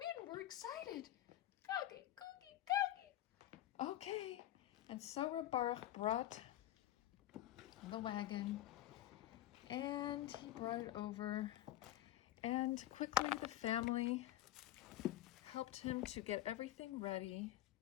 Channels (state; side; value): quieter; right; 14.0 dB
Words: We're excited. Cookie, cookie, cookie. Okay. And so Reb Baruch brought the wagon, and he brought it over, and quickly the family helped him to get everything ready.